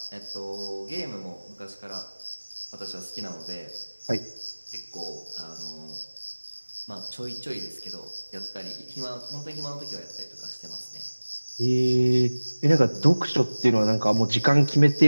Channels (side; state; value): both; inverted; correlation -1.00